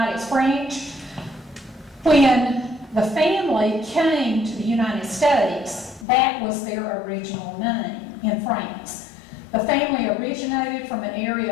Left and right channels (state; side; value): drops out; right; at 6.1 s